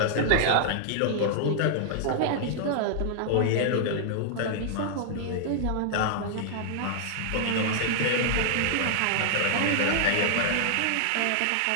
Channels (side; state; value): both; different; correlation -0.01